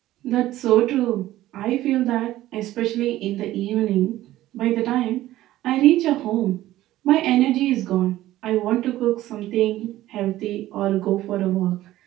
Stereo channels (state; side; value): quieter; left; 15.0 dB